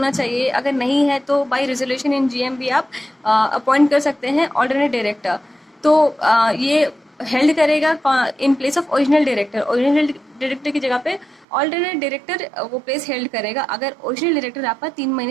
चाहिए, अगर नहीं है तो बाय रेजोल्यूशन इन GM भी आप अपॉइंट कर सकते हैं ऑल्टरनेट डायरेक्टर। तो ये हेल्ड करेगा in place of original director. Original director की जगह पे ऑल्टरनेट डायरेक्टर वो प्लेस हेल्ड करेगा अगर ओरिजिनल डायरेक्टर आपका 3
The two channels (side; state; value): left; drops out; at 11.5 s